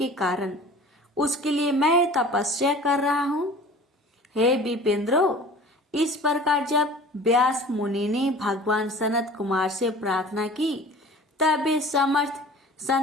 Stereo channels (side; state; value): both; normal; correlation 0.43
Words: कारण उसके लिए मैं तपस्या कर रहा हूँ। हे विपेंद्रो, इस प्रकार जब व्यास मुनि ने भगवान सनत कुमार से प्रार्थना की, तब वे समर्थ